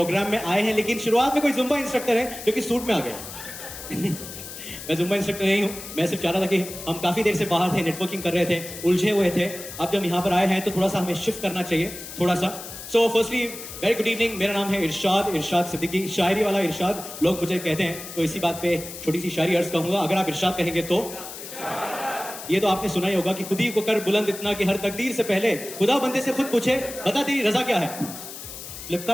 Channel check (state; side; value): noise; left; hiss, 11 dB below the sound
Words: में आए हैं, लेकिन शुरुआत में कोई जुम्बा इंस्ट्रक्टर है जो कि सूट में आ गया। मैं जुम्बा इंस्ट्रक्टर नहीं हूँ, मैं सिर्फ चाह रहा था कि हम काफी देर से बाहर थे, नेटवर्किंग कर रहे थे, उलझे हुए थे। अब जब यहाँ पर आए हैं तो थोड़ा सा हमें शिफ्ट करना चाहिए, थोड़ा सा। So firstly very good evening, मेरा नाम है इरशाद सिद्दीकी, शायरी वाला इरशाद लोग मुझे कहते हैं। तो इसी बात पे छोटी सी शायरी अर्ज कहूंगा। अगर आप इरशाद कहेंगे तो ये तो आपने सुना ही होगा कि खुदी को कर बुलंद इतना कि हर तकदीर से पहले खुदा बंदे से खुद पूछे बता तेरी रजा क्या है।